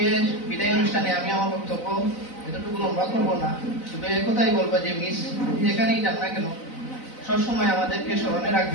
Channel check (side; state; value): right; late; 4.0 ms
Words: বিদায় অনুষ্ঠানে আমি আমার বক্তব্য এতটুকু লম্বা করবো না, শুধু একথাই বলবো যে মিস যেখানেই যান না কেন সবসময় আমাদেরকে স্মরণে